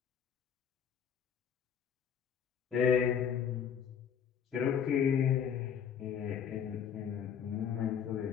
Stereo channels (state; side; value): quieter; right; 7.9 dB